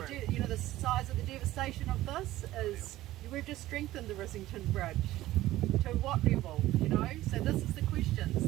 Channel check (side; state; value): left; quieter; 15.7 dB